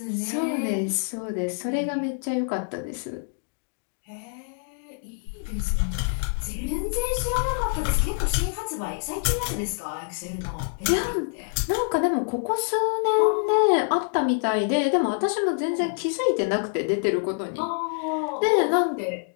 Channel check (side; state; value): right; silent; digital silence